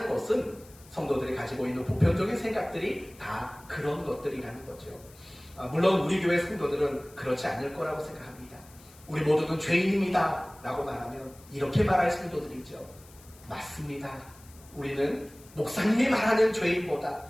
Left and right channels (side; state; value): left; noise; hiss, 24 dB below the sound